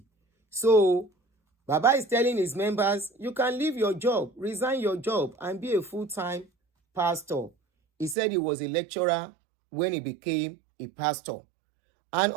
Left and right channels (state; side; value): drops out; left; at 8.2 s